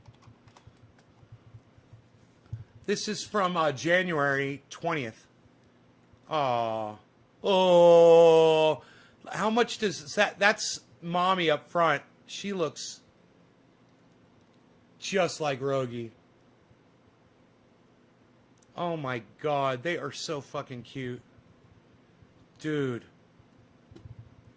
This is from January 20th. Oh, how much does that? That's mommy up front. She looks just like Rogie. Oh my God, they are so fucking cute. Dude.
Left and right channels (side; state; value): both; identical; correlation 1.00